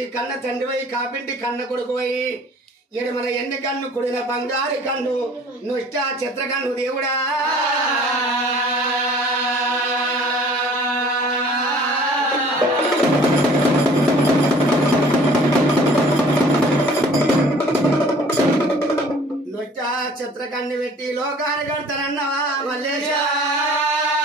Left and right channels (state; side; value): normal; both; correlation 0.51